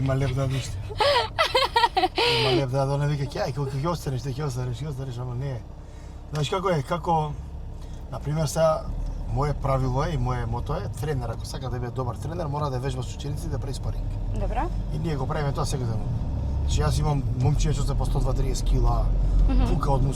лев да ниште. Има лев да не вика ќе ќе останеш, ќе останеш, ама не. Знаеш како е, например сега мое правило е и мое мото е тренер, ако сака да биде добар тренер, мора да вежба со ученици да прави спаринг. Добра? И ние го правиме тоа секојдневно. Значи јас имам момчиња што се по 120-30 кила, пука од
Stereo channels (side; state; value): both; identical; correlation 1.00